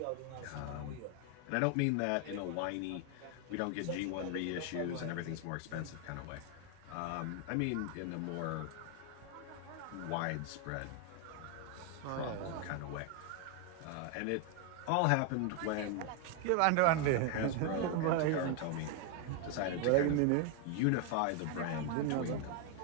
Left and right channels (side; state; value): both; different; correlation 0.01